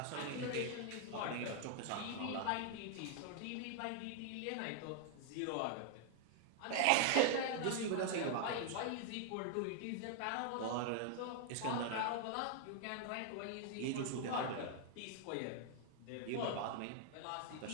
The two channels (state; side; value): different; both; correlation 0.00